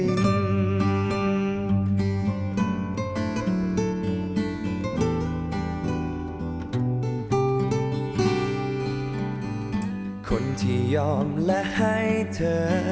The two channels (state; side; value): identical; both; correlation 1.00